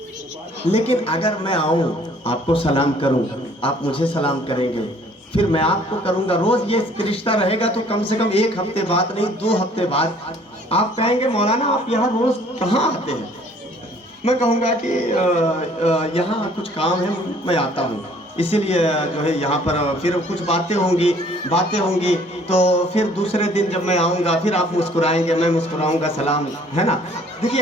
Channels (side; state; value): both; normal; correlation 0.58